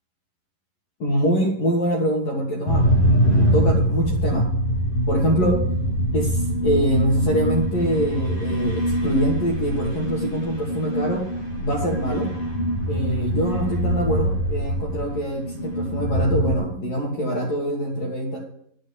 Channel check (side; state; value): right; late; 11 ms